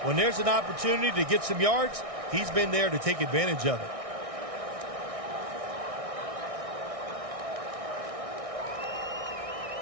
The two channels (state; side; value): late; left; 1.6 ms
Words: When there's an opportunity to get some yards, he's been there to take advantage of it.